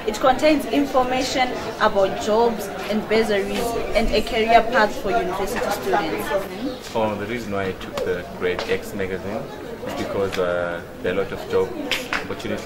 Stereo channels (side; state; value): both; identical; correlation 1.00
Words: It contains information about jobs and bursaries and a career path for university students. The reason why I took the Grade X magazine is because there are a lot of job